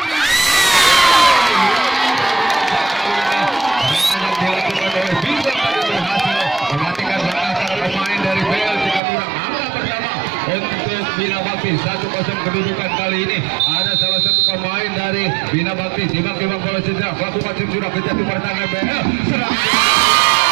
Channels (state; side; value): drops out; left; at 9.0 s